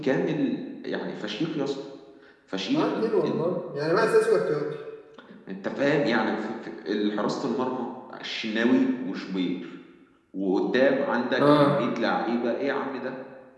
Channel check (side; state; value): both; identical; correlation 1.00